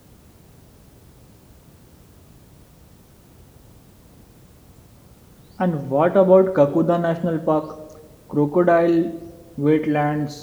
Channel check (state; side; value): identical; both; correlation 1.00